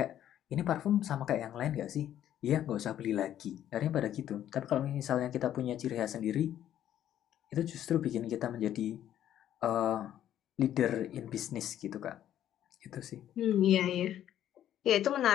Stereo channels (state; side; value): quieter; right; 11.3 dB